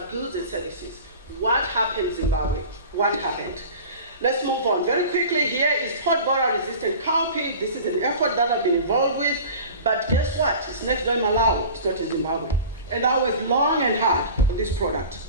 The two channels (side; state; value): both; inverted; correlation -0.39